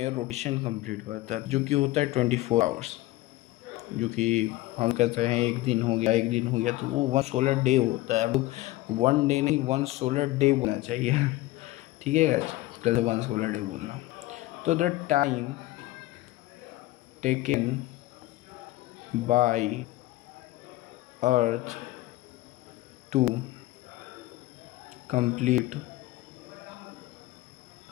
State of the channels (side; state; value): right; quieter; 17.8 dB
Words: रोटेशन कंप्लीट करता है, जो कि होता है 24 आवर्स। जो कि हम कहते हैं एक दिन हो गया, एक दिन हो गया, तो वो 1 सोलर डे होता है। 1 डे नहीं, 1 सोलर डे बोलना चाहिए। ठीक है गाइस, पहले 1 सोलर डे बोलना। तो the time taken by earth to complete